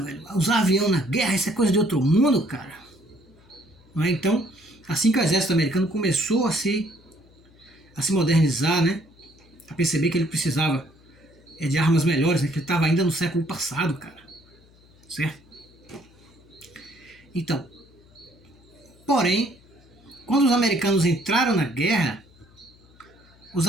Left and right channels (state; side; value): noise; left; hum, 28 dB below the sound